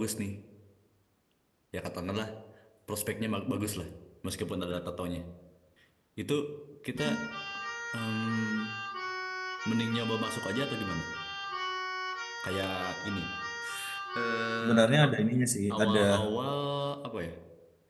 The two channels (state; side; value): identical; both; correlation 1.00